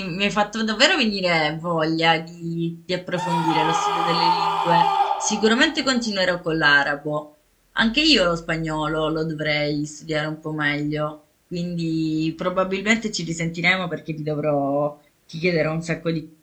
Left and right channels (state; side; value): identical; both; correlation 1.00